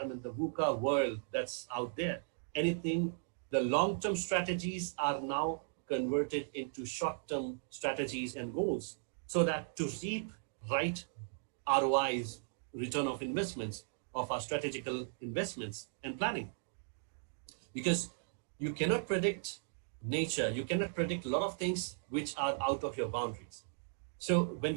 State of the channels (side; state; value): left; silent; digital silence